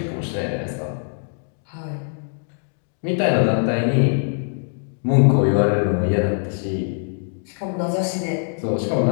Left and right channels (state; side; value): silent; right; digital silence